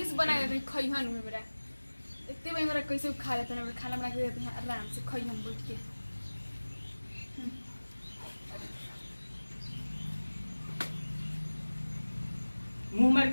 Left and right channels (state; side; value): inverted; both; correlation -1.00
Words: से बना देते खइहन में मेरा इतने भाई मेरा कैसे खा लेते हैं खाना बना के देते हैं आराम से खइहन बैठ के मुंह मार